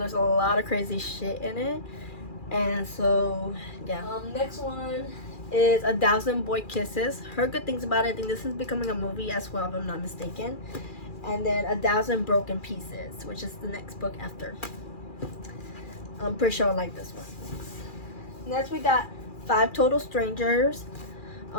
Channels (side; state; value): right; late; 2.4 ms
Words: a lot of crazy shit in it. And so, yeah. Next one is 1,000 Boy Kisses. Heard good things about it. I think this is becoming a movie as well, if I'm not mistaken. And then 1,000 Broken Pieces, which is the next book after. I'm pretty sure I like this one. Next we got 5 Total Strangers.